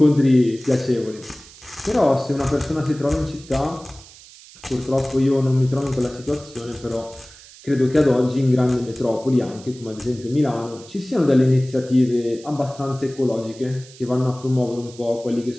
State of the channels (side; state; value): right; noise; hiss, 21 dB below the sound